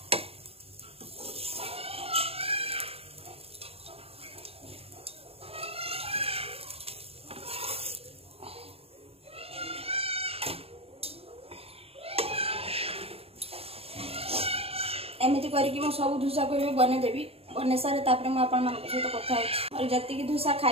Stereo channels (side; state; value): left; late; 0.28 ms